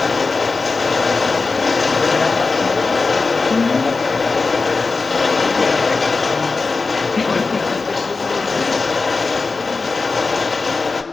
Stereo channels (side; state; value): right; quieter; 4.1 dB